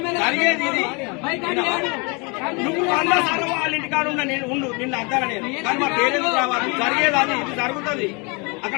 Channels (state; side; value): quieter; right; 30.6 dB